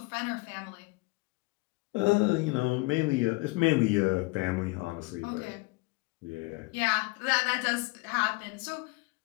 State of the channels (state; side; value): quieter; right; 24.5 dB